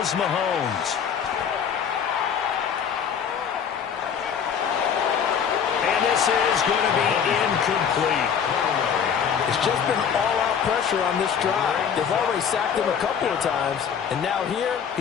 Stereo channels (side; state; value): right; quieter; 7.6 dB